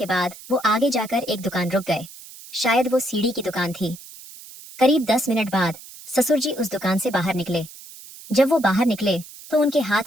बाद वो आगे जाकर एक दुकान रुक गए। शायद वो सीढ़ी की दुकान थी। करीब 10 मिनट बाद ससुर जी उस दुकान से बाहर निकले। जब वो बाहर निकले तो उनके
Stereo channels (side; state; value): right; noise; hiss, 17 dB below the sound